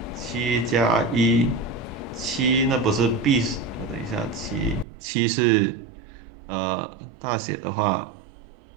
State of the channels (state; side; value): drops out; left; at 4.9 s